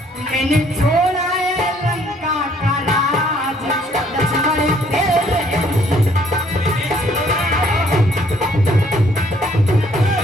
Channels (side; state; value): both; normal; correlation 0.63